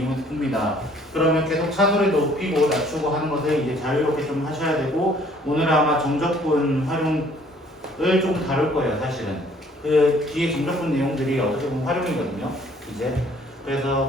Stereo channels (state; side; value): normal; both; correlation 0.59